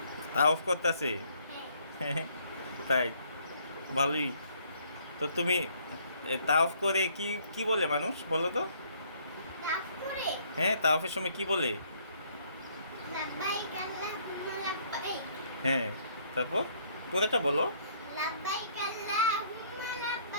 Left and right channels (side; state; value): both; inverted; correlation -0.64